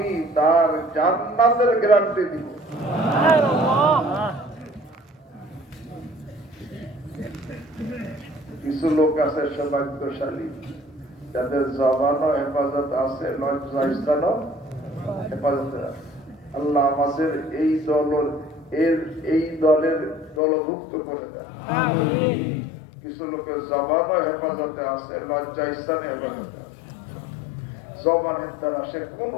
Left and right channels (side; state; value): right; drops out; at 20.4 s